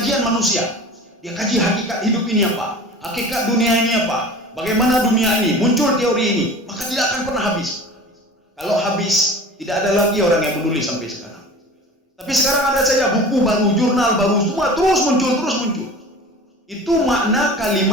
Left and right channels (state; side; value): normal; both; correlation 0.38